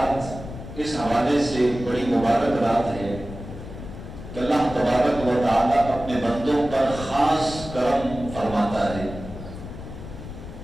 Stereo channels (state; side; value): noise; left; rumble, 11 dB below the sound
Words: اس حوالے سے بڑی مبارک رات ہے کہ اللہ تبارک و تعالیٰ اپنے بندوں پر خاص کرم فرماتا ہے۔